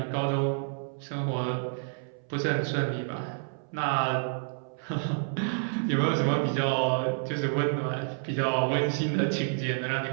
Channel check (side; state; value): left; silent; 58 dB below the other